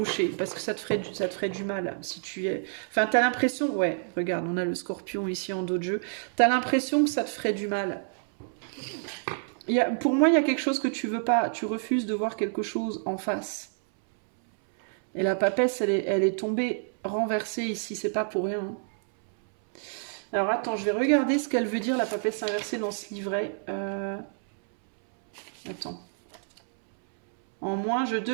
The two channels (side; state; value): left; silent; 59 dB below the other